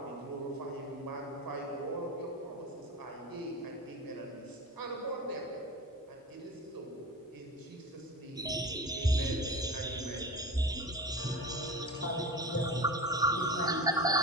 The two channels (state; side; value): normal; both; correlation 0.30